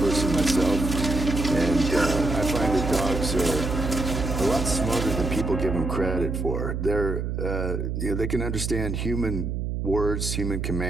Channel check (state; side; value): noise; right; hum, 2 dB below the sound